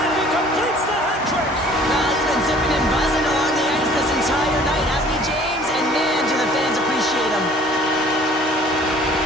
he completes the hat trick. Well, he's been zipping and buzzing along the ice this entire night, hasn't he, James? And man, do the fans appreciate him.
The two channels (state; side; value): normal; both; correlation 0.53